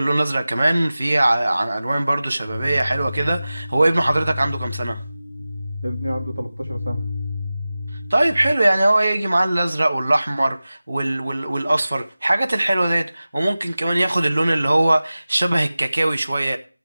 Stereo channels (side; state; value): both; inverted; correlation -0.96